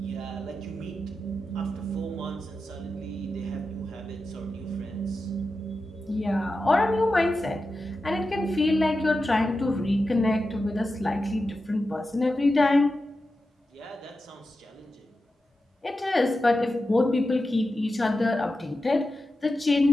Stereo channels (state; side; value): normal; both; correlation 0.91